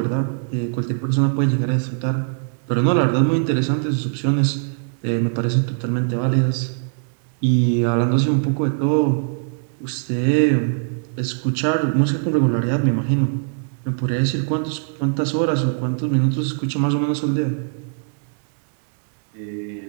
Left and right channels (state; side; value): silent; left; digital silence